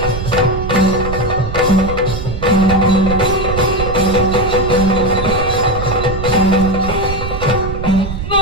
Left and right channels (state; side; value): noise; right; rumble, 6 dB below the sound